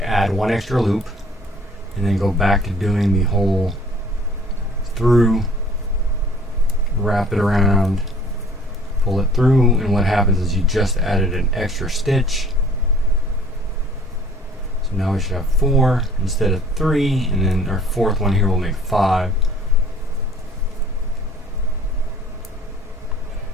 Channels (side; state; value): both; normal; correlation 0.54